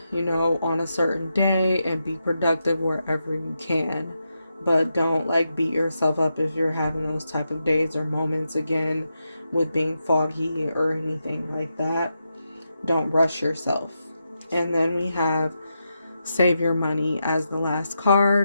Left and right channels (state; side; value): inverted; both; correlation -0.86